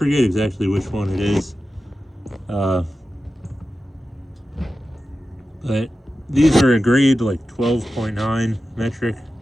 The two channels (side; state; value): both; normal; correlation 0.93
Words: exactly which one it is. But these are a grade like 12.9 metric